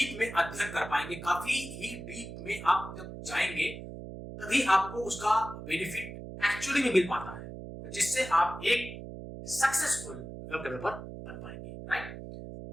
में अध्ययन कर पाएंगे। काफी ही डीप में आप जब जाएंगे तभी आपको उसका बेनिफिट एक्चुअली में मिल पाता है, जिससे आप एक सक्सेसफुल वेब डेवलपर बन पाएंगे। राइट,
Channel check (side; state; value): right; noise; hum, 10 dB below the sound